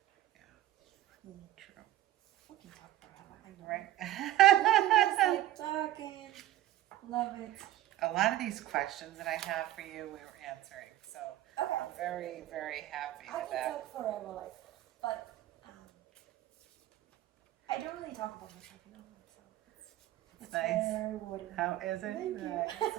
Yeah. True. We can talk forever. I know. Right. Just like talking. Love it. A lot of these questions that I have for you, we were answering. So Okay. I'm very, very happy I with can that. talk forever, like, but I don't really talk about myself, you know, so it's nice. very rewarding. How is it? Thank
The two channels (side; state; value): left; quieter; 14.2 dB